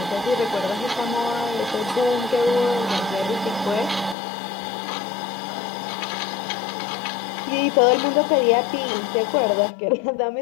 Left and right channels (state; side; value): drops out; right; at 4.2 s